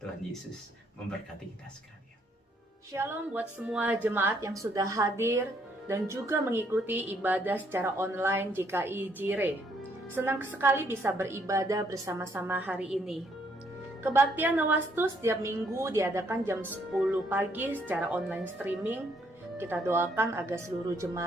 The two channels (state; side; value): normal; both; correlation 0.70